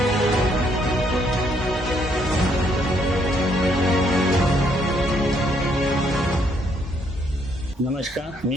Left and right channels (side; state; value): both; normal; correlation 0.70